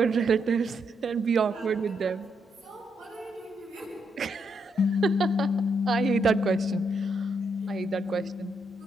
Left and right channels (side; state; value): both; normal; correlation 0.78